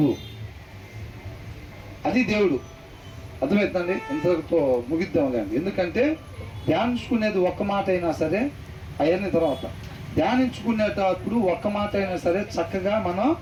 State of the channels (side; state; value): both; identical; correlation 1.00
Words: అది దేవుడు. అర్థమవుతుందండి? ఇంతతో ముగిద్దాంలేండి. ఎందుకంటే ధ్యానించుకునేది ఒక్క మాట అయినా సరే, అవన్నీ తర్వాత ధ్యానించుకునేటప్పుడు ఒక్క మాట అయినా సరే చక్కగా మనం